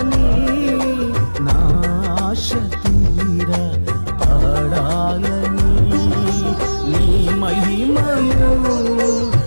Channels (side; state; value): both; inverted; correlation -1.00